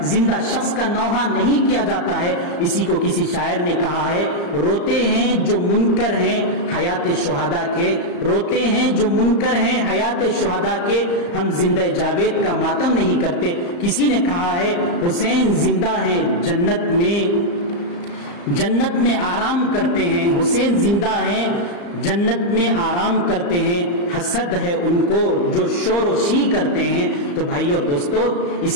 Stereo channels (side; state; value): right; late; 35 ms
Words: زندہ شخص کا نوحہ نہیں کیا جاتا ہے۔ اسی کو کسی شاعر نے کہا ہے، روتے ہیں جو منکر ہیں حیات شہداء کے، روتے ہیں جو منکر ہیں حیات شہداء کے، ہم زندہ جاوید کا ماتم نہیں کرتے۔ کسی نے کہا ہے حسین زندہ ہیں جنت میں آرام کرتے ہیں، حسین زندہ ہیں جنت میں آرام کرتے ہیں، حسد ہے ان کو جو شور و شی کرتے ہیں۔ تو بھائی اور دوستو،